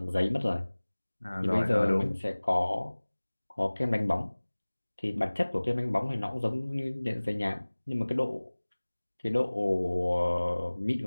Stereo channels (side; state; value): both; inverted; correlation -1.00